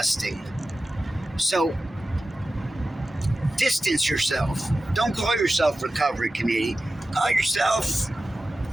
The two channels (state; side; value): normal; both; correlation 0.94